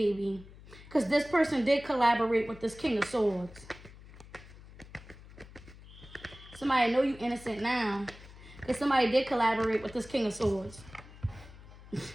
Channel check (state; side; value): noise; left; hum, 19 dB below the sound